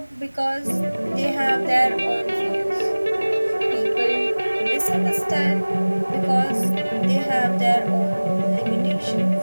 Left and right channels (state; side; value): inverted; both; correlation -1.00